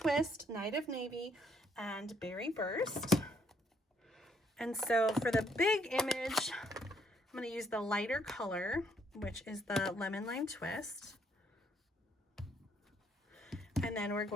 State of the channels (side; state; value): both; normal; correlation 0.69